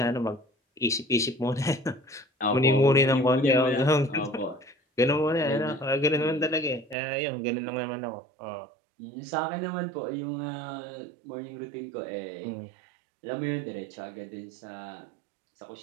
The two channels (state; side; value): drops out; left; at 7.0 s